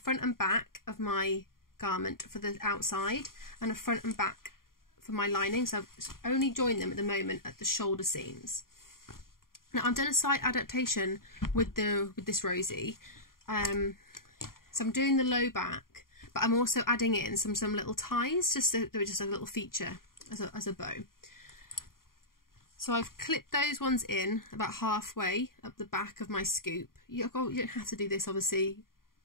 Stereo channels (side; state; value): right; late; 0.91 ms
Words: and back of my garment for the outside and the front and back for my lining, so I've only joined them at the moment at the shoulder seams. Now I've done a slight adaptation with this Rosie, so I'm doing the low back, but I'm also adding in some little ties just so they're just a little feature as a bow. So I've clipped those ones in about halfway up the back of my scoop. You don't have to do this, obviously.